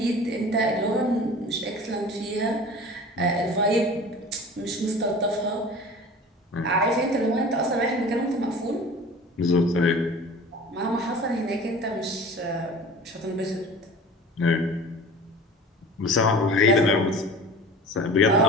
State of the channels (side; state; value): both; normal; correlation 0.40